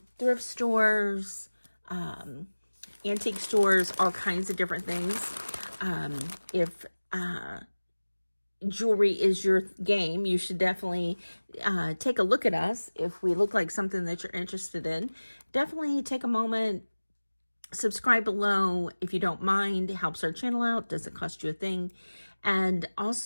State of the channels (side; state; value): both; inverted; correlation -1.00